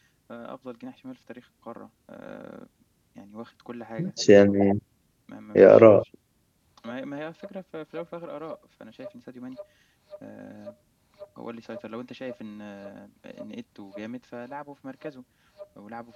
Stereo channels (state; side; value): identical; both; correlation 1.00